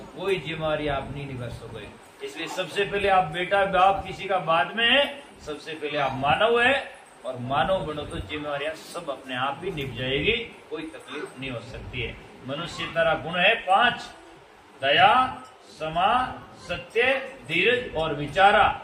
जिम्मेवारी आप नहीं निभा सकोगे। इसलिए सबसे पहले आप बेटा बाप किसी का बाद में है, सबसे पहले आप मानव है, और मानव बनो तो जिम्मेवारियां सब अपने आप ही निभ जाएगी, कोई तकलीफ नहीं हो सकती है। मनुष्यता का गुण है 5, दया, क्षमा, सत्य, धीरज और विचारा।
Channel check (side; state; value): both; identical; correlation 1.00